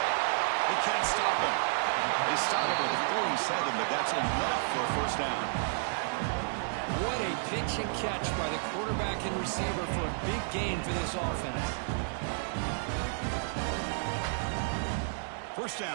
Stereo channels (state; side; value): silent; left; digital silence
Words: They can't stop him. They stop him at the 47, but that's enough for a first down. What a pitch and catch by the quarterback and receiver for a big gain for this offense. First